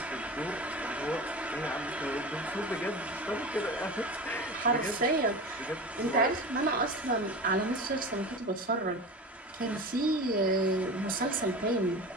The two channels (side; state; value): both; normal; correlation 0.30